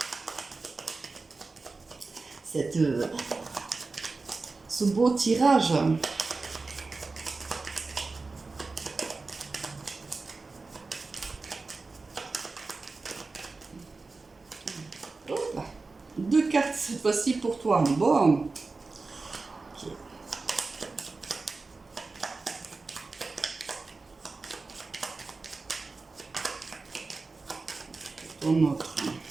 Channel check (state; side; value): quieter; left; 3.8 dB